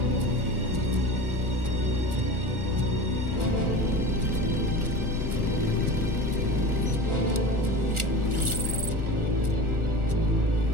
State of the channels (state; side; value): late; left; 1.4 ms